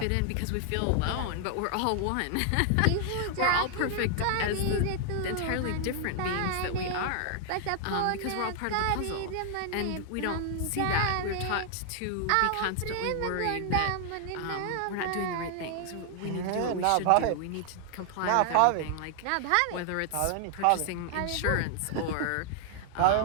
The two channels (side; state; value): both; different; correlation 0.00